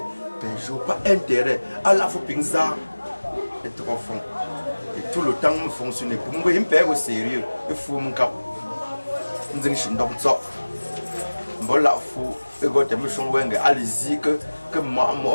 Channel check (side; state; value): both; inverted; correlation -1.00